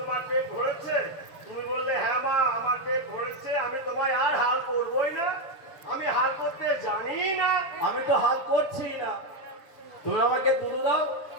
পেট ভরেছে, তুমি বললে হ্যাঁ মা আমার পেট ভরেছে, আমি তোমায় আর হাল করবোই না, আমি হাল করতে জানি না। আমি তো হাল করছি না, তুমি আমাকে দুধ দাও,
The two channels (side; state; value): right; late; 7.0 ms